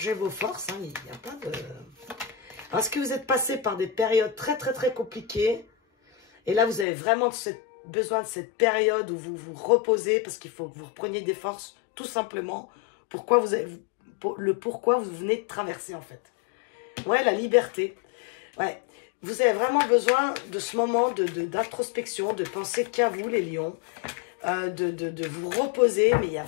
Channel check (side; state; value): right; drops out; at 6.9 s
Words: vos forces. Hein, il n'y a pas de... Est-ce que vous êtes passé par des périodes très, très, très compliquées? Et là, vous avez vraiment besoin de cette période où vous vous reposez parce qu'il faut que vous repreniez des forces, tout simplement. Pourquoi vous venez de traverser, en fait. Ouais, la liberté. Ouais. Vous avez vraiment besoin de ce moment d'introspection, de penser qu'à vous, les lions, de vous reposer. Mais il y a